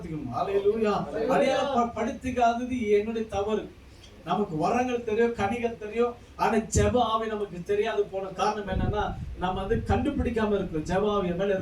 ஹல்லேலூயா. அடையாளப்படுத்திக்காதது என்னுடைய தவறு. நமக்கு வரங்கள் தெரியும், கனிகள் தெரியும், ஆனா ஜெப ஆவி நமக்கு தெரியாது போன காரணம் என்னன்னா நம்ம வந்து கண்டுபிடிக்காம இருக்கிறோம். ஜெப ஆவி மேல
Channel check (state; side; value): identical; both; correlation 1.00